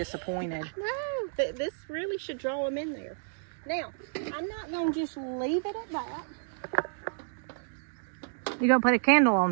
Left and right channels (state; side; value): silent; left; digital silence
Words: No, this really should draw them in there. Now, I'm not going to just leave it at that. You're going to put a candle